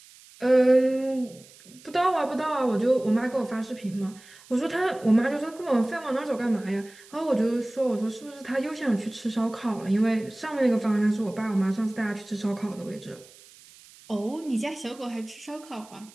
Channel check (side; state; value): right; noise; hiss, 23 dB below the sound